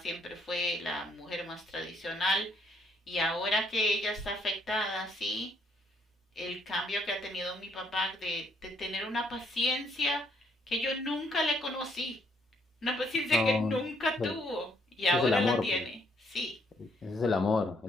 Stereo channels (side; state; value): both; normal; correlation 0.69